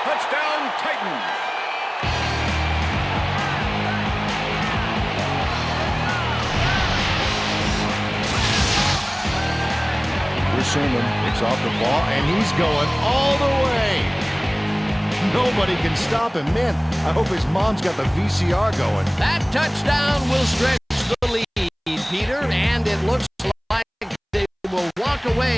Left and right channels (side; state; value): both; identical; correlation 1.00